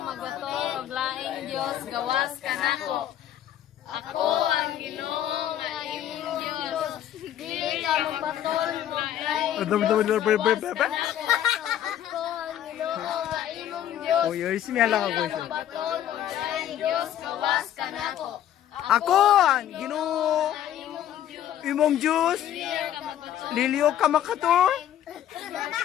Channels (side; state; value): right; quieter; 11.2 dB